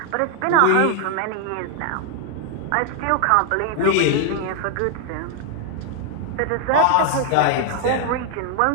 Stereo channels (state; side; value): different; both; correlation 0.00